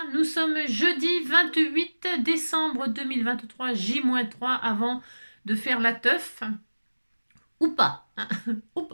Nous sommes jeudi 28 décembre 2023, J-3 avant de faire la teuf. Ou pas, hein, ou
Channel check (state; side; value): inverted; both; correlation -1.00